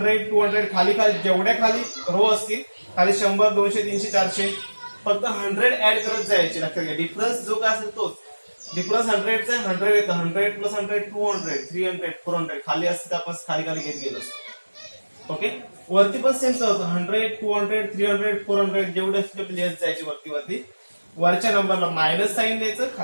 200 खाली खाली जेवढ्या खाली रो असतील खाली 100 200 300 400 फक्त 100 ऍड करत जायचे. लक्षात घ्या, डिफरन्स जो काय असेल तोच. डिफरन्स 100 चा 100 येतं, 100 प्लस 100 200 300 400 खाली असते आपण खाली खाली घेत गेलो. ओके, वरती पण सेम होतं 100 200 300 400 जेवढे असते तेवढे लिहत जायचे वरती वरती. वरच्या नंबरला मायनस साइन द्यायचं,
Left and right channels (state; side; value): inverted; both; correlation -1.00